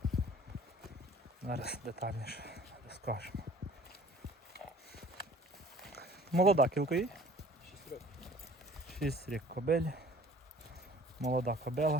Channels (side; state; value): both; normal; correlation 0.50